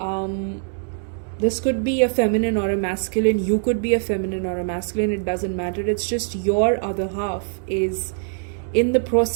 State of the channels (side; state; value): left; silent; digital silence